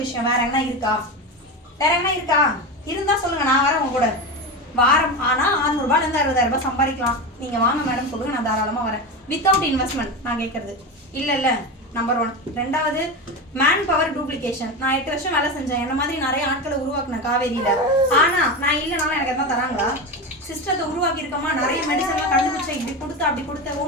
விஷயம். வேற என்ன இருக்கா? இருந்தா சொல்லுங்க, நான் வரேன் உங்க கூட. வாரம் ஆனா 600 ரூபாயில இருந்து 60,000 ரூபாய் சம்பாதிக்கலாம். நீங்க வாங்க மேடம் சொல்லுங்க, நான் தாராளமா வரேன். வித்தவுட் இன்வெஸ்ட்மெண்ட் நான் கேட்கறது இல்ல. நம்பர் 1. ரெண்டாவது, மேன் பவர் டூப்ளிகேஷன். நான் 8 வருஷம் வேலை செஞ்சேன். என்ன மாதிரி நிறைய ஆட்களை உருவாக்குனேன் காவேரியில. ஆனா நான் இல்லைனாலும் எனக்கு எதாவது தராங்களா? சிஸ்டத்தை உருவாக்கி இருக்கோமா, நிறைய மெடிசன்லாம் கண்டுபிடிச்சேன், இப்படி கொடுத்த அப்படி கொடுத்த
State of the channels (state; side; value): normal; both; correlation 0.20